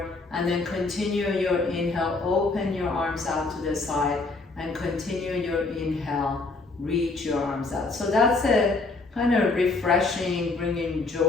and then continue your inhale, open your arms out to the side, and continue your inhale, reach your arms out. So that's a kind of refreshing, bringing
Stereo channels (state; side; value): quieter; right; 3.5 dB